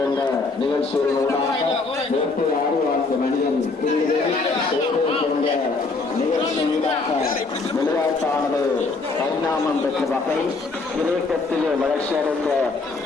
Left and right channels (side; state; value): right; quieter; 3.8 dB